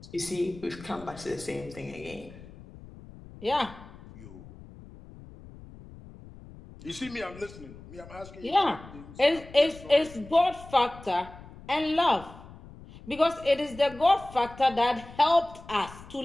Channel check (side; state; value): left; noise; rumble, 18 dB below the sound